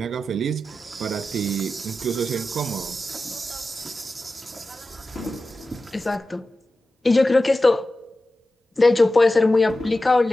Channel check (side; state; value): both; normal; correlation 0.93